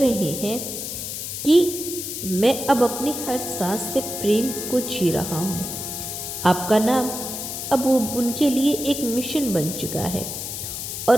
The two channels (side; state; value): left; noise; hiss, 6 dB below the sound